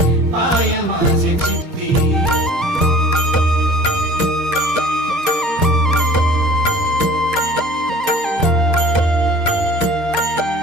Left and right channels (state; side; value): normal; both; correlation 0.46